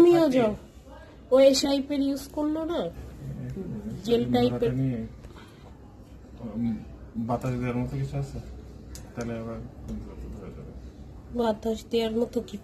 যাও। ও এই টাইপের ইউজ করলো না, জেল টাইপের। বাতাস দেওয়ার মতো কিছু আছে? তাহলে আবার বাতাস দেওয়ার মতো কি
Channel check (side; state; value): both; identical; correlation 1.00